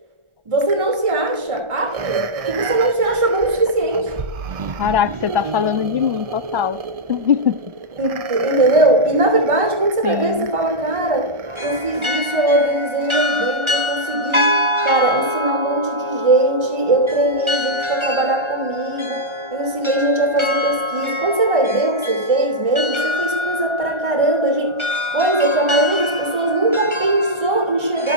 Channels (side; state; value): left; late; 1.4 ms